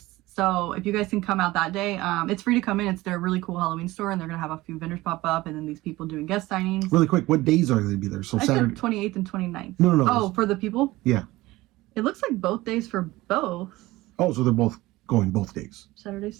So if you guys can come out that day, it's free to come in. It's their really cool Halloween store, and they're going to have a few vendors pop up, and then these people doing guest signings. Really quick, what days are they going to be there? So Saturday? 28th and 29th. No. Oh, for the people? Yeah. It looks like both days for both. Oh, so they're both going both days. Saturday,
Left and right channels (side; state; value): left; quieter; 18.8 dB